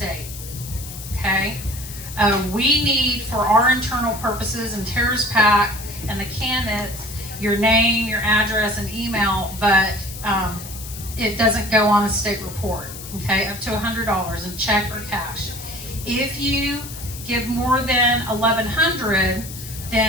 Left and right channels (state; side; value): noise; left; hiss, 12 dB below the sound